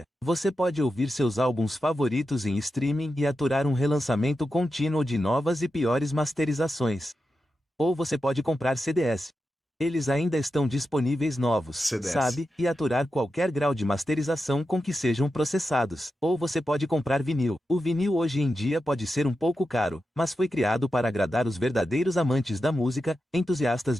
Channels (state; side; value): normal; both; correlation 0.89